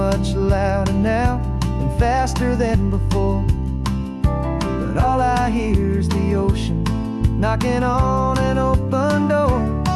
louder now and faster than before, but all I hear is the ocean knocking on an open door.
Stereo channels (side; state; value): both; identical; correlation 1.00